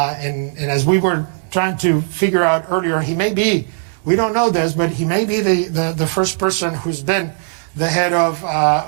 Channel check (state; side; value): silent; left; digital silence